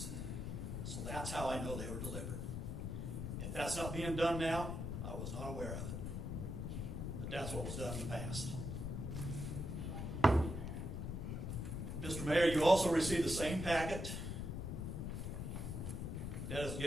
So that's how I know they were delivered. If that's not being done now, I was not aware of it. But that's what was done in the past. Mr. Mayor, you also received the same packet that is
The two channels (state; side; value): noise; left; rumble, 3 dB below the sound